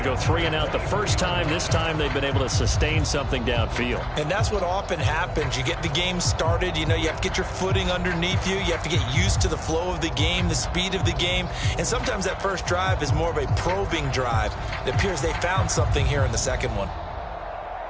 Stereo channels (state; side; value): identical; both; correlation 1.00